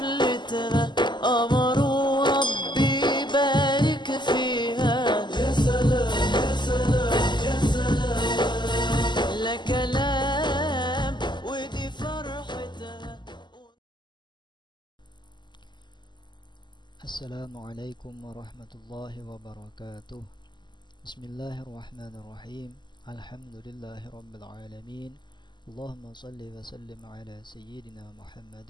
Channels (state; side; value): late; right; 0.21 ms